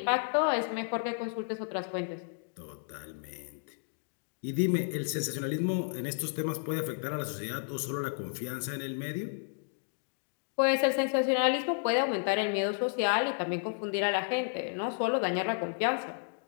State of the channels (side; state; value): right; silent; digital silence